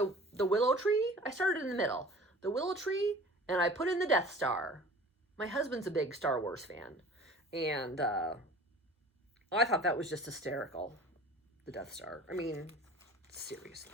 willow tree. I started in the middle. The willow tree, and I put in the Death Star. My husband's a big Star Wars fan. And I thought that was just hysterical, the Death Star. I mean,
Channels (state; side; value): normal; both; correlation 0.44